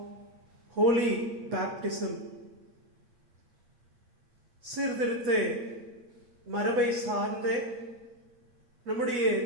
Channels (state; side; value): late; left; 8.3 ms